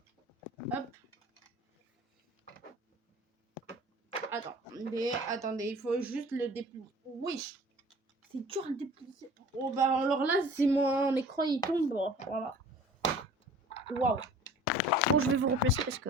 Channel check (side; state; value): both; normal; correlation 0.45